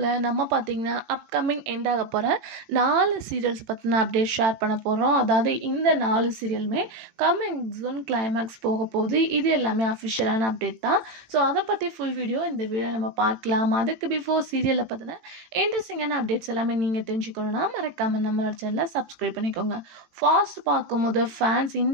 நம்ம பார்த்தீங்கன்னா அப்கமிங் எண்ட் ஆக போகிற 4 சீரியல்ஸ் பற்றின அப்டேட் ஷேர் பண்ண போகிறோம். அதாவது இந்த 4 சீரியலுமே கம்மிங் ஜூன் கிளைமேக்ஸ் போக போகுது. இது எல்லாமே அஃபிஷியலான அப்டேட் தான். ஸோ அதை பற்றி ஃபுல் வீடியோ இந்த வீடியோ நம்ம பார்க்கலாம். அதுக்கு பிஃபோர் சீரியலை பற்றின இன்ட்ரெஸ்டிங்கான அப்டேட்ஸ் எல்லாமே நீங்கள் தெரிஞ்சுக்கணுன்னா மறக்காமல் நம்மளோட சேனலை சப்ஸ்கிரைப் பண்ணிக்கோங்க. ஃபாஸ்ட் பார்க்கும்போது ஃபேன்ஸ்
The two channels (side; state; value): left; late; 18 ms